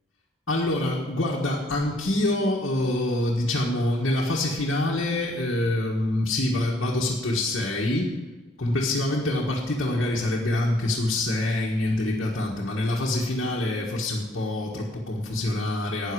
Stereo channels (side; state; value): both; normal; correlation 0.65